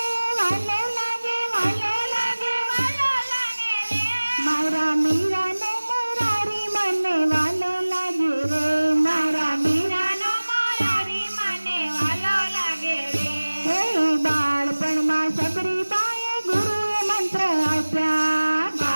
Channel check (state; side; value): inverted; both; correlation -1.00